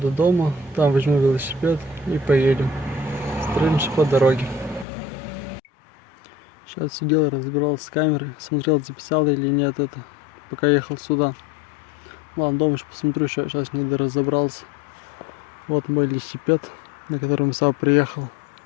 дома, там возьму велосипед и поедем. Строимся по дороге. Сейчас сидел, разбирался с камерой, смотрел, записал или нет это, пока ехал сюда. Ладно, дома еще посмотрю, сейчас не разобрался. Вот мой велосипед, на котором сам приехал.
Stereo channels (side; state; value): right; drops out; at 4.9 s